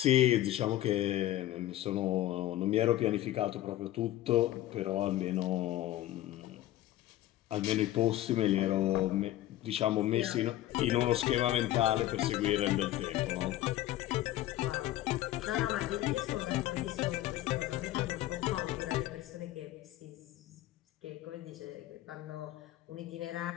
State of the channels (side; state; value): right; quieter; 14.5 dB